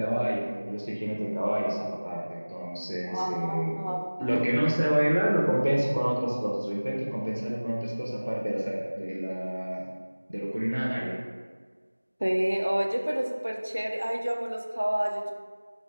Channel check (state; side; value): inverted; both; correlation -1.00